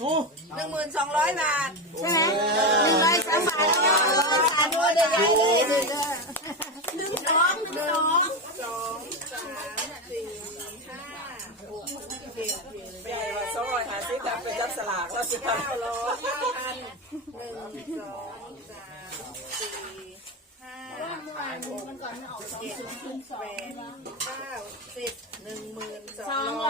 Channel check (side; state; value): both; normal; correlation 0.15